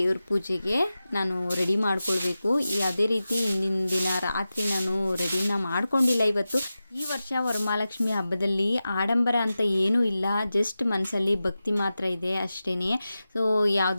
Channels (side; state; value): both; inverted; correlation -0.94